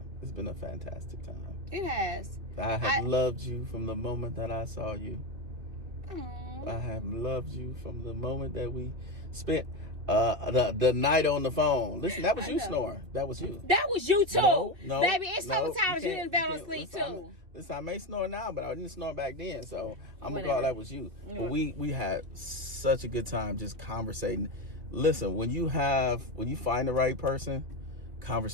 It's been a fantastic time. It has. I have loved you from the moment that I saw you. Aww. I have loved you from the moment that we spent the night on the phone. Listen, that was you snoring. That was you. That was you too. No, baby, it's sometimes you didn't fall asleep too. Listen, I may snore now, but I didn't snore back then, so I'm gonna call that was you. But we had such a good time just conversating. Listen, when you find the right person,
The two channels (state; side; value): late; left; 2.7 ms